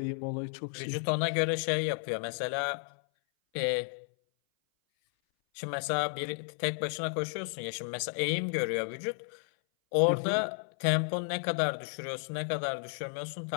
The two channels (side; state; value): right; silent; 56 dB below the other